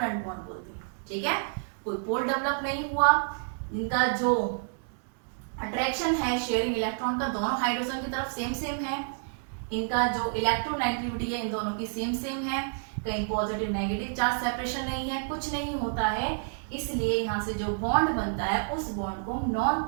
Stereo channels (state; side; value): silent; left; digital silence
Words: बॉन्ड बोलते हैं, ठीक है। कोई पोल डेवलप नहीं हुआ, इनका जो अट्रैक्शन है शेयरिंग इलेक्ट्रॉन का दोनों हाइड्रोजन की तरफ सेम सेम है, इनका जो इलेक्ट्रोनेगेटिविटी है इन दोनों की सेम सेम है, कहीं पॉजिटिव नेगेटिव चार्ज सेपरेशन नहीं है, कुछ नहीं होता है, इसलिए यहाँ से जो बॉन्ड बनता है उस बॉन्ड को नॉन